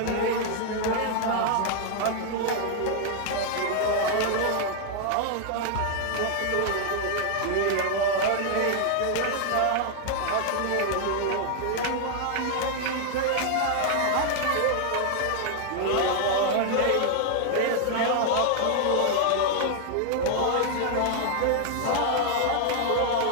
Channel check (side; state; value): both; different; correlation 0.00